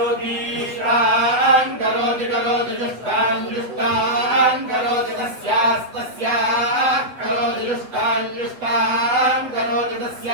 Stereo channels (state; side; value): late; left; 8.1 ms